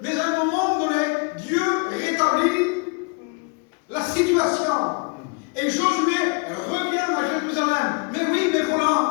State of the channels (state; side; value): quieter; right; 33.6 dB